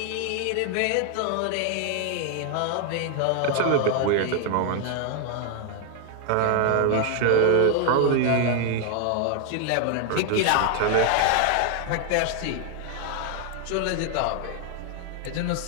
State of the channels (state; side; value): different; both; correlation 0.00